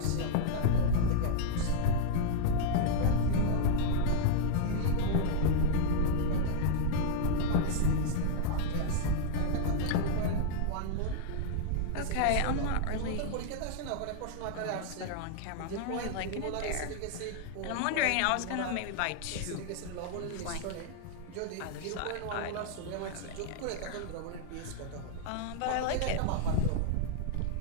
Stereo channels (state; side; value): different; both; correlation 0.00